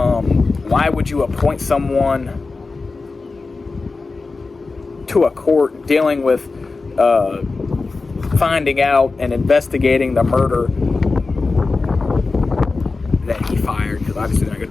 why would you appoint someone to a court dealing with finding out and investigating the murder that he fired? Because obviously they're not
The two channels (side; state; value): right; quieter; 3.9 dB